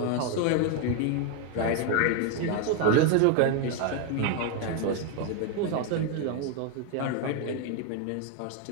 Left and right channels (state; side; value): different; both; correlation 0.01